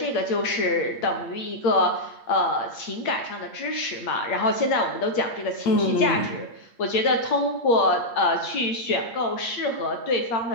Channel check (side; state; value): right; late; 8.6 ms